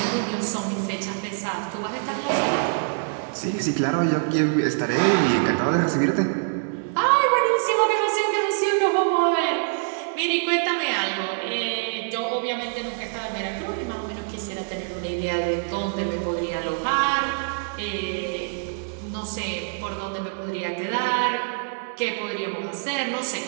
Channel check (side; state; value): left; silent; digital silence